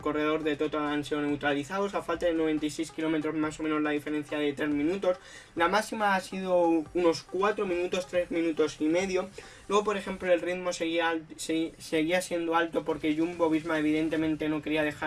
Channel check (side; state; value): both; identical; correlation 1.00